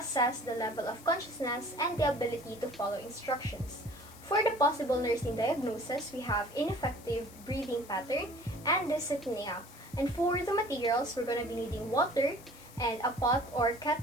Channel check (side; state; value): left; noise; hiss, 20 dB below the sound